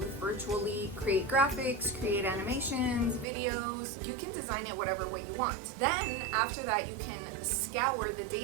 virtually, create graphics, create animations, videos. You can design it whatever way you want. Then after that, you can scour the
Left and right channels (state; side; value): drops out; left; at 3.2 s